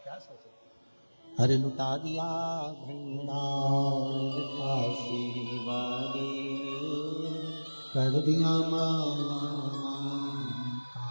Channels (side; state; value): both; inverted; correlation -1.00